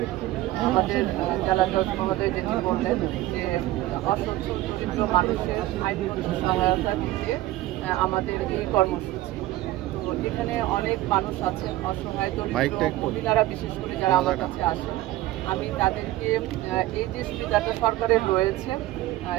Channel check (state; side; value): quieter; left; 16.2 dB